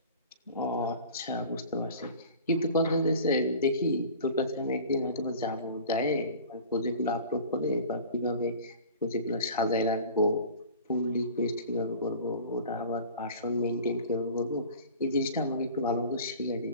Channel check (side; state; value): both; inverted; correlation -0.41